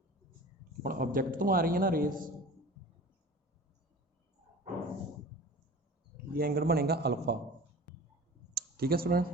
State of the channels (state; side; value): normal; both; correlation 0.39